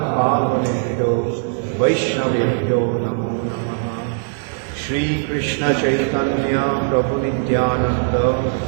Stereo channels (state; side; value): silent; left; 66 dB below the other